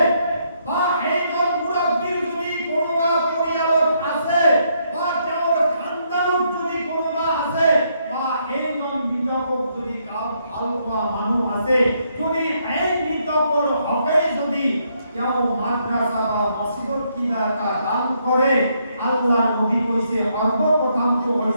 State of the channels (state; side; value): inverted; both; correlation -0.74